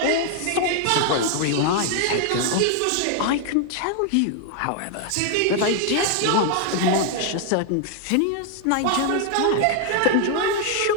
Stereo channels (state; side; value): different; both; correlation 0.00